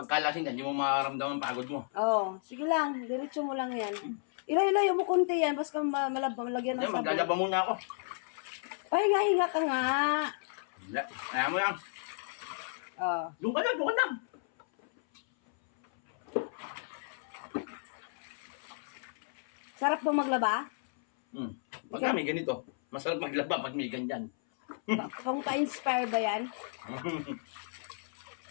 kalasing ka, hindi mo makaramdaman pagod mo. Oh, sige lang, diretso mo lang yan. Ilayo mo konti yan, basta malagyan ng Hindi, sabon. maglalaba muna ako. Pahinga-hinga ka nga. Ayaw mo yan. Oh. Doon ka lang. Sarap po maglaba? Pag may ganito, masarap maglaba pag may ganyan. Pang pa-inspire ba yan?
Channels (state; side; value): silent; right; 56 dB below the other